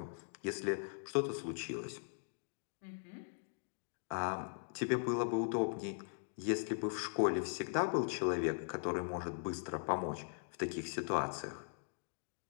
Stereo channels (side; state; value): right; silent; digital silence